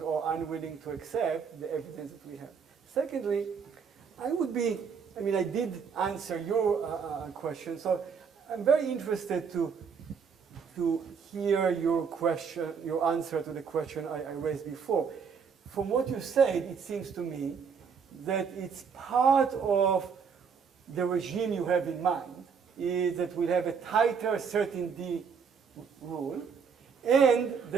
or unwilling to accept the evidence that we have. Secondly, I did answer your question, so I'm very interested to hear your question, your answer to the question I raised before. From what you said, it seems to me that it's part of the regime you have in mind, is that we'll have a tighter certainty rule, and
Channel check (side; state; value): left; quieter; 6.2 dB